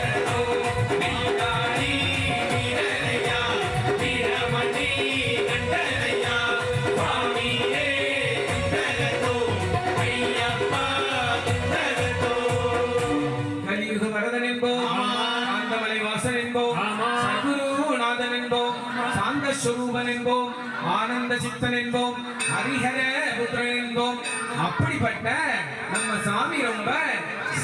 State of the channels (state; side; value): identical; both; correlation 1.00